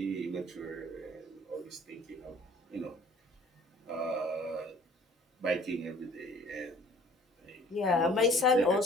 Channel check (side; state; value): both; normal; correlation 0.53